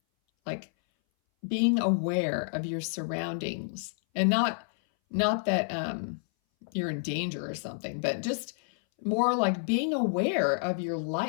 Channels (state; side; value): silent; right; 58 dB below the other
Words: like being aware of your surroundings, and not that you're in danger or something, but just more like being aware of your